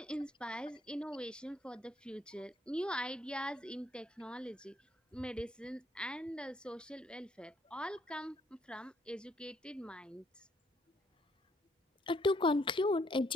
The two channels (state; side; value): normal; both; correlation 0.69